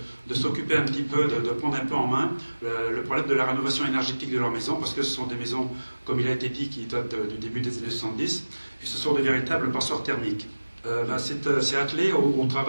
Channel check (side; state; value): both; inverted; correlation -1.00